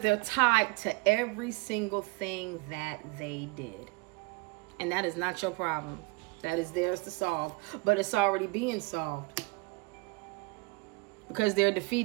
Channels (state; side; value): quieter; left; 26.6 dB